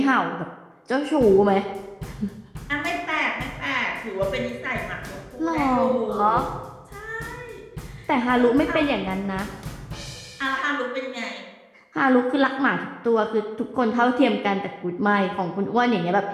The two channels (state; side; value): identical; both; correlation 1.00